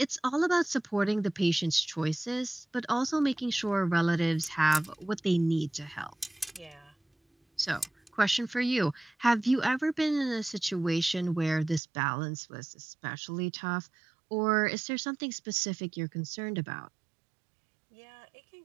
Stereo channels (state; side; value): drops out; left; at 11.8 s